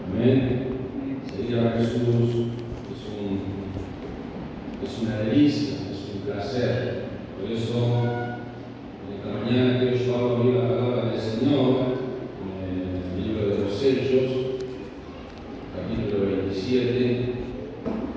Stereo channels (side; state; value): both; identical; correlation 1.00